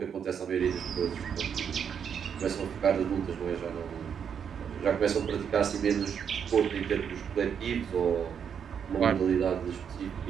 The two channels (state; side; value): quieter; left; 7.6 dB